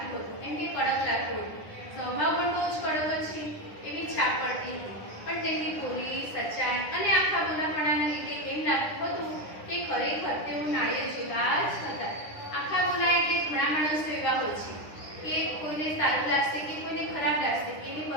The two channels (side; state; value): right; late; 9.9 ms